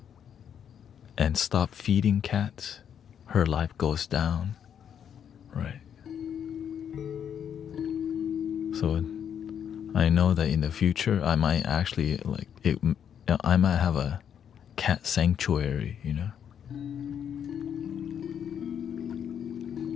and stopped feeding cats, her life goes down, right? So I know that in the future I might actually I might have a cat sanctuary,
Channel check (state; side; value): quieter; right; 8.5 dB